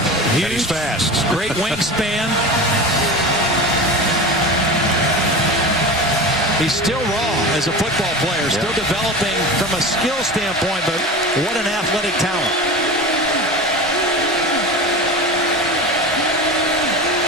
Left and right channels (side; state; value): both; normal; correlation 0.30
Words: And he's fast. Great wingspan. He's still raw as a football player, still developing from a skill standpoint, but what an athletic talent.